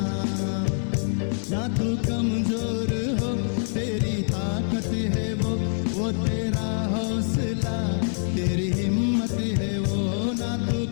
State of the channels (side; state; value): right; silent; 61 dB below the other